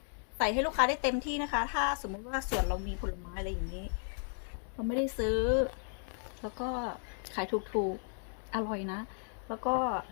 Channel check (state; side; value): silent; right; 55 dB below the other